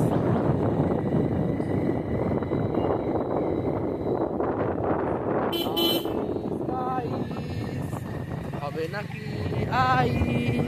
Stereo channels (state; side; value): identical; both; correlation 1.00